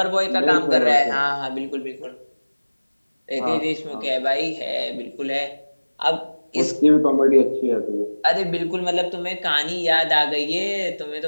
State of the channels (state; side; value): inverted; both; correlation -1.00